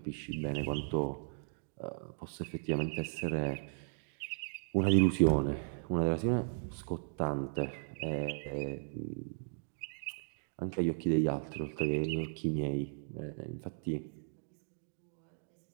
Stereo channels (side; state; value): left; silent; digital silence